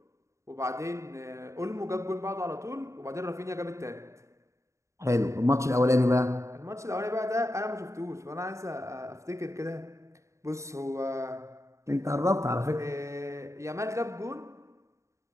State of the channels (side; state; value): left; late; 0.14 ms